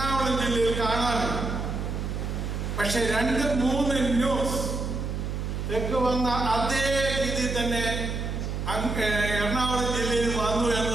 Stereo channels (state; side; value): noise; right; hum, 3 dB below the sound